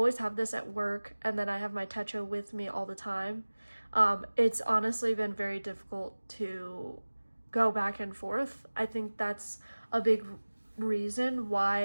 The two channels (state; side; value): inverted; both; correlation -1.00